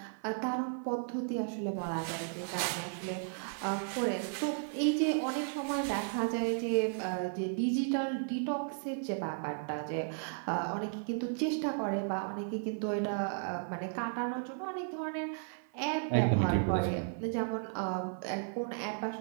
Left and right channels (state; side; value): silent; left; 55 dB below the other